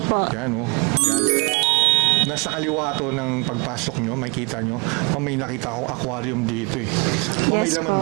Yan, oh. Yan. Nasa kaliwa to ng pagpasok nyo, makikita nyo, may nakita akong aquarium dito eh. May Yes laman po.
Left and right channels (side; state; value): left; quieter; 31.7 dB